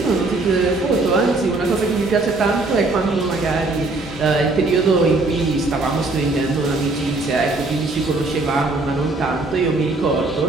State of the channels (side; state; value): left; quieter; 3.2 dB